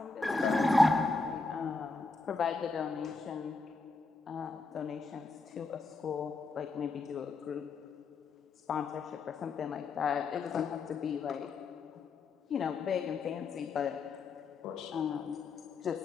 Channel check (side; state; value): right; quieter; 4.0 dB